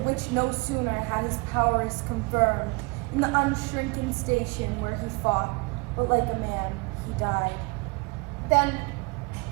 no sooner had his powers confirmed, in the unshrinking station where he fought, but like a man he died. Then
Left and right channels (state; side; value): quieter; left; 28.4 dB